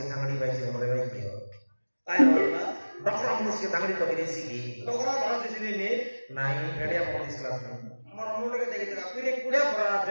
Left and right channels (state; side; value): inverted; both; correlation -1.00